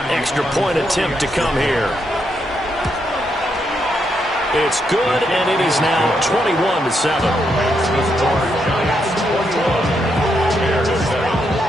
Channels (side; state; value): both; normal; correlation 0.79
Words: Extra point attempt to come here. It's good, and it is now 21-7.